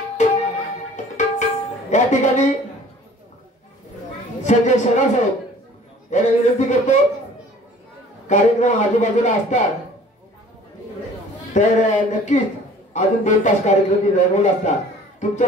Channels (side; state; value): both; normal; correlation 0.50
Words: या ठिकाणी संजय शेलार साहेब यांना विनंती करतो, कार्यक्रम आजूबाजूला असतात तर नक्कीच अजून 2 तास कार्यक्रम रंगवला असता.